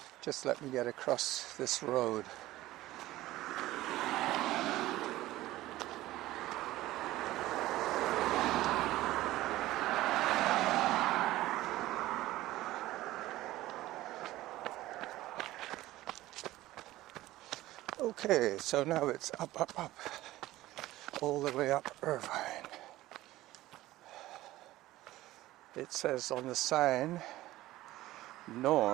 Just let me get across this road. Okay, so now it's up, up, up, all the way up Irvine. It says on the sign,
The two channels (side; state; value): left; quieter; 16.5 dB